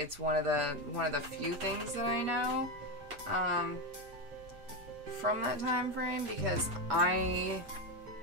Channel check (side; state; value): left; late; 6.9 ms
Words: one of the few things that I know from that time frame, because I